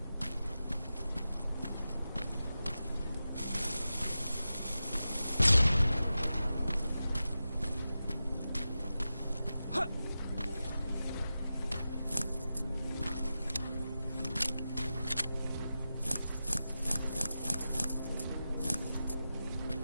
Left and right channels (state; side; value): inverted; both; correlation -0.92